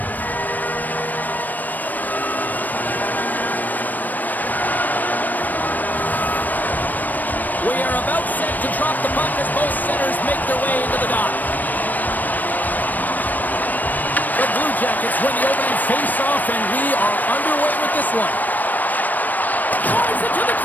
We are about set to drop the puck as both centers make their way into the dot. The Blue Jackets win the opening face-off, and we are underway with this one. Drives it to the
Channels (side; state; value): right; late; 0.085 ms